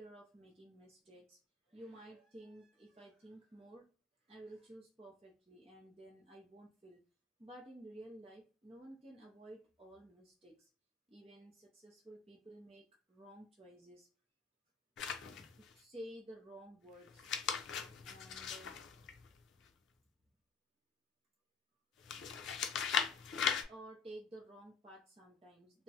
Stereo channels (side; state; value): right; quieter; 5.9 dB